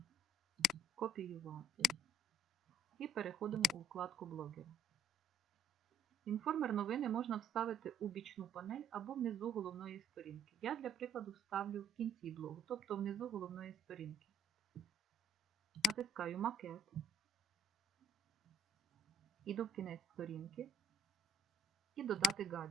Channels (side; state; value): both; normal; correlation 0.59